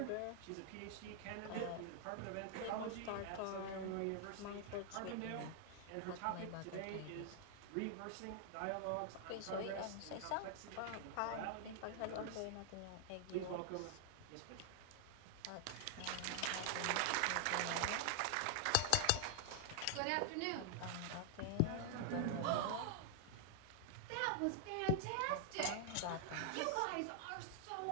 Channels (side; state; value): both; different; correlation 0.00